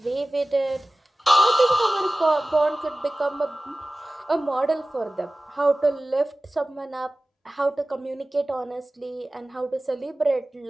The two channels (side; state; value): both; normal; correlation 0.97